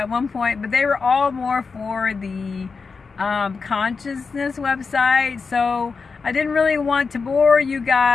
one point, but they were all more for the consciousness website, so I didn't really want to bore you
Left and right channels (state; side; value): quieter; right; 4.8 dB